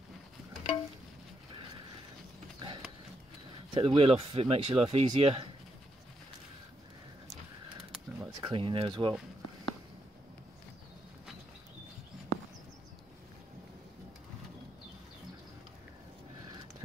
wheel off if it makes your life easier. I like to clean in there as well.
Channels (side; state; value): both; normal; correlation 0.79